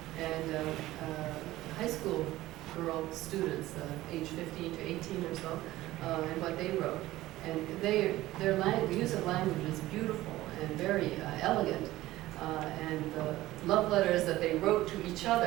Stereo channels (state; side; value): quieter; left; 16.5 dB